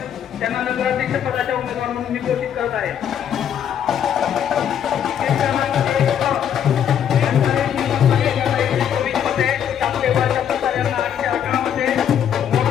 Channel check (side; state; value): right; quieter; 9.1 dB